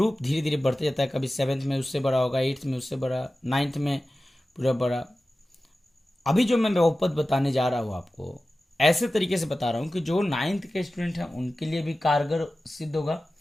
धीरे धीरे बढ़ते जाता है। कभी 7th में उससे बड़ा होगा, 8th में उससे बड़ा, 9th में पूरा बड़ा। अभी जो मैं बहुपद बताने जा रहा हूँ आपको, ऐसे तरीके से बता रहा हूँ कि जो 9th के स्टूडेंट हैं उनके लिए भी कारगर सिद्ध होगा,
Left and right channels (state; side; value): normal; both; correlation 0.95